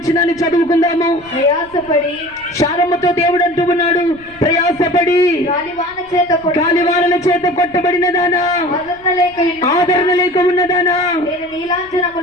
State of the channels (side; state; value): right; noise; rumble, 26 dB below the sound